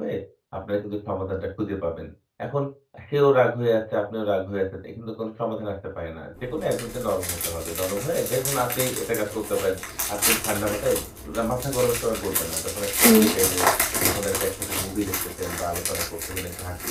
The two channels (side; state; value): both; identical; correlation 1.00